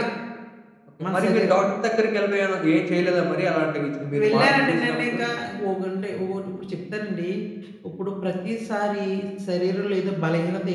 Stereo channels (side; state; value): both; identical; correlation 1.00